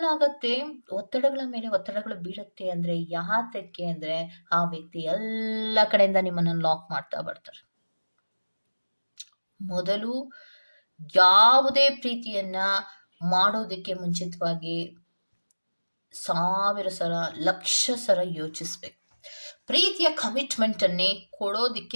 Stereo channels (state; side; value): inverted; both; correlation -1.00